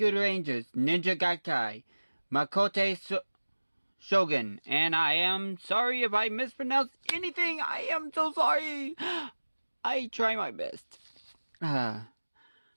Rangers Ninja Gaikai Makote Shogun, and I am sorry if I mispronounced anything. I am so sorry. I try my best.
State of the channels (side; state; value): both; inverted; correlation -1.00